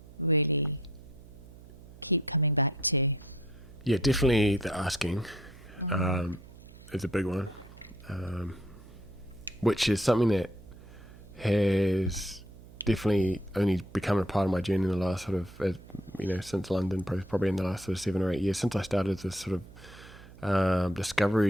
really keep coming back to? Yeah, definitely the asking is a big one, which is something that has definitely only become a part of my journey in the last sort of, since London, probably in the last sort of 7 or 8 years, since I started this sort of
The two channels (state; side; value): noise; right; hum, 19 dB below the sound